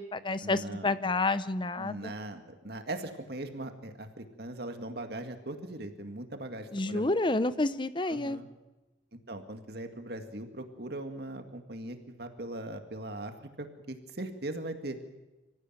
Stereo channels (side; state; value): both; normal; correlation 0.40